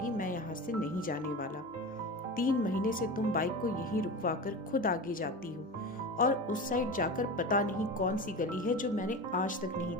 मैं यहाँ से नहीं जाने वाला। 3 महीने से तुम बाइक को यहीं रुकवा कर खुद आगे जाती हो और उस साइड जाकर पता नहीं कौन सी गली है जो मैंने आज तक नहीं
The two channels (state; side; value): normal; both; correlation 0.28